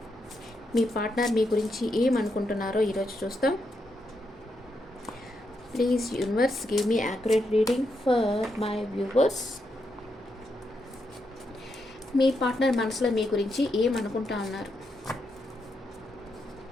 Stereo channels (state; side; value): normal; both; correlation 0.82